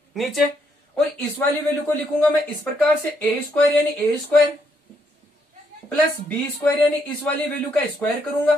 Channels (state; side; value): normal; both; correlation 0.74